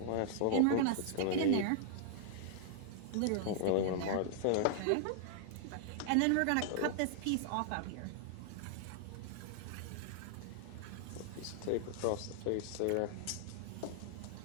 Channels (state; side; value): different; both; correlation -0.01